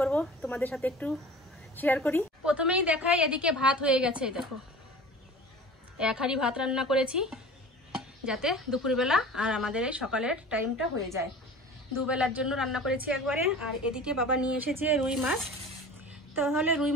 তোমাদের সাথে একটু শেয়ার করি। প্রথমেই দেখাই, এদিকে ভাত হয়ে গেছে। দেখো, 1 হাঁড়ি ভাত রান্না করেছি, যাতে দুপুরবেলা আর আমাদের এই সকালের টাইমটা হয়ে যায়। 2 বেলার জন্য রান্না করেছি একবারে। আর এদিকে বাবা নিয়ে এসেছে রুই মাছ। তাহলে রুই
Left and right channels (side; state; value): both; normal; correlation 0.40